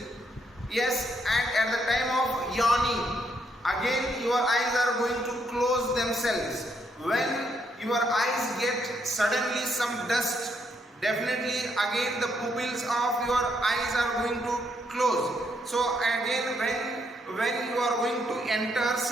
Yes. And at the time of yawning, again your eyes are going to close themselves. When your eyes get suddenly some dust, definitely again the pupils of your eyes are going to close. So again when you are going to enter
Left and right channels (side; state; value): both; normal; correlation 0.74